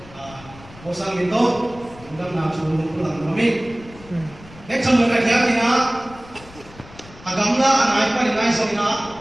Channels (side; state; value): left; noise; rumble, 20 dB below the sound